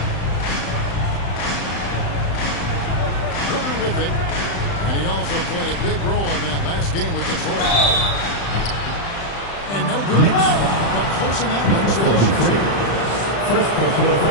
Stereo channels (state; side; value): late; right; 35 ms